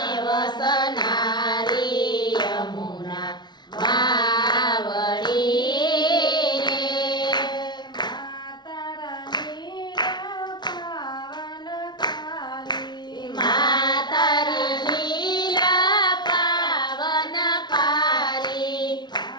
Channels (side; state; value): right; late; 0.21 ms